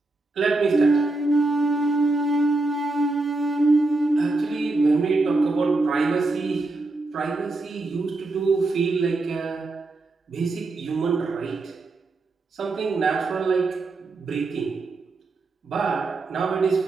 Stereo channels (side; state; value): left; quieter; 3.2 dB